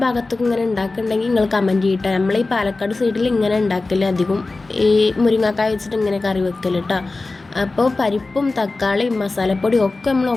ഭാഗത്തൊക്കെ ഇങ്ങനെ ഉണ്ടാക്കുന്നുണ്ടെങ്കിൽ നിങ്ങൾ കമൻറ്റ് ചെയ്യട്ടോ. നമ്മൾ ഈ പാലക്കാട് സൈഡിൽ ഇങ്ങനെ ഉണ്ടാക്കല് അധികം ഈ മുരിങ്ങക്കായ വെച്ചിട്ട് ഇങ്ങനെ കറി വെക്കല് കേട്ടോ. അപ്പോൾ പരിപ്പും തക്കാളിയും മസാലപ്പൊടിയും ഒക്കെ നമ്മൾ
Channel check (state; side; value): quieter; right; 3.4 dB